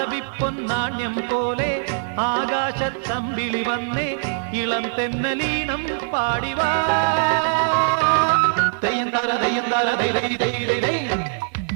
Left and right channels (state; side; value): silent; left; digital silence